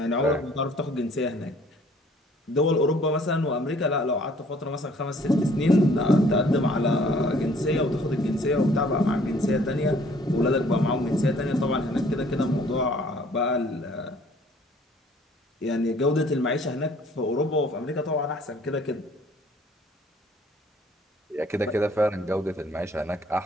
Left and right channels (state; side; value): normal; both; correlation 0.58